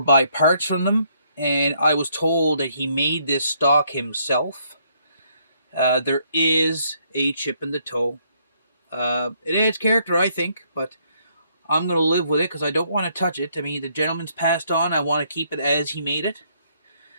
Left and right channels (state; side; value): inverted; both; correlation -0.69